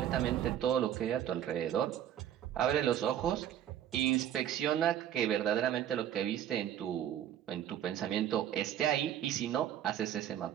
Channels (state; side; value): quieter; left; 10.8 dB